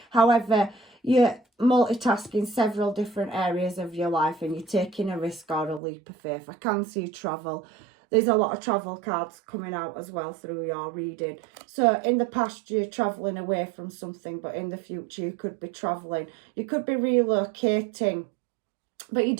However, you're multitasking several different areas of your life and you're taking a risk or a leap of faith. I can see travel. There's a lot of travel cards coming out as well through your reading. So in the past, you're travelling away from something, but in the future, you could be travelling. You could be relocating, but you're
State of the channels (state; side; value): drops out; left; at 5.8 s